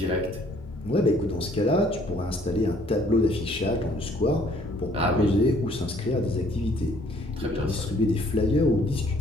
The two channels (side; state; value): right; noise; rumble, 25 dB below the sound